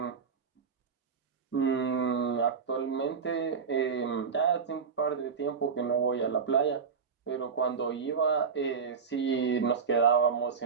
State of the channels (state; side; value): quieter; left; 5.9 dB